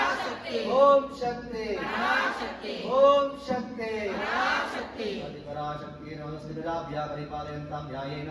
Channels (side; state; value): both; identical; correlation 1.00